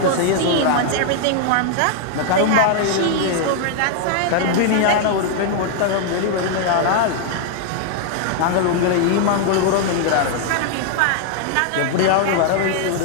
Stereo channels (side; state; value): both; different; correlation 0.00